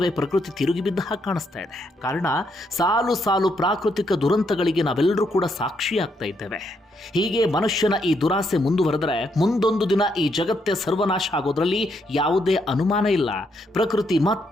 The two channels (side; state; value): both; normal; correlation 0.76